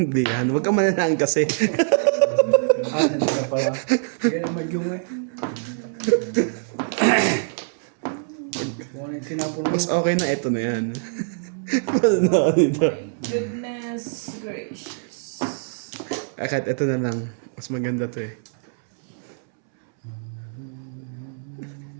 yan. Huwag ka mananahan kasi. Hindi ka pala. Kaya naman yung eh. Kung ano yung tinapon mo. Mas okay na ito na yan. Ano dito? Goodness gracious. Kahit ito na lang. Mas maganda to eh.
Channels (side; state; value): left; silent; 63 dB below the other